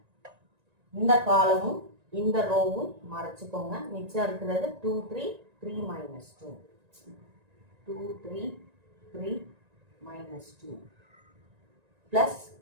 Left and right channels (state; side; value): late; left; 1.9 ms